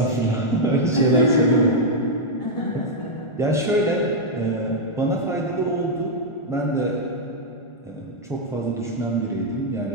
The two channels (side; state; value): right; late; 1.4 ms